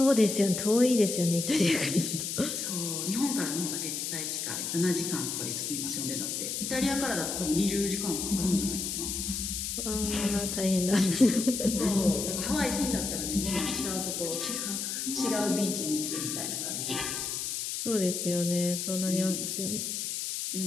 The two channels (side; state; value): left; noise; hiss, 3 dB below the sound